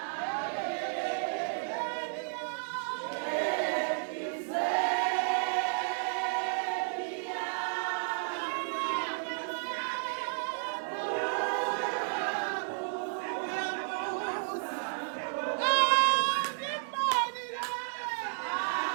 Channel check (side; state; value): left; silent; 56 dB below the other